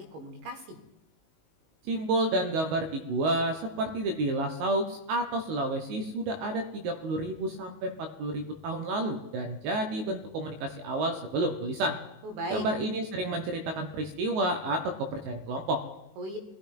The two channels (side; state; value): left; late; 19 ms